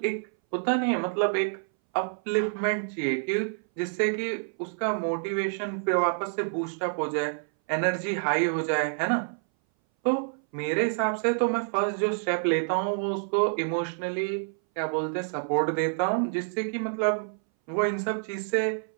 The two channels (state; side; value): silent; left; 60 dB below the other